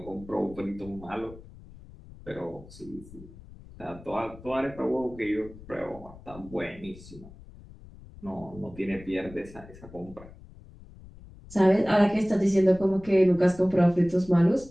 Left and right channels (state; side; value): noise; left; rumble, 19 dB below the sound